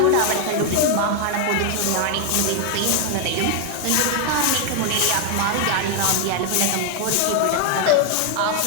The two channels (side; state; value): both; different; correlation 0.00